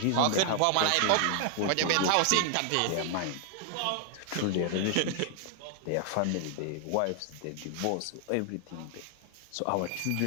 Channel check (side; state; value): both; different; correlation 0.00